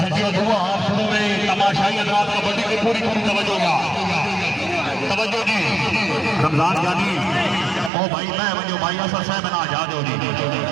दुआ आप शुरू में तमाशाई हजरात कबड्डी की पूरी तवज्जो का तवज्जो जी रमजान जानी ओ भाई मैं वजो भाई असर साहब ना आजाद हो जी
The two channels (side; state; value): left; drops out; at 7.9 s